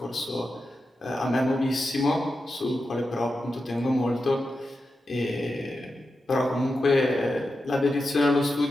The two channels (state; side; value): normal; both; correlation 0.90